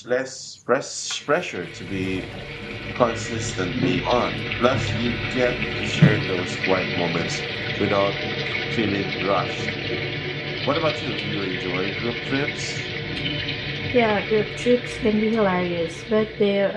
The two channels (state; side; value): identical; both; correlation 1.00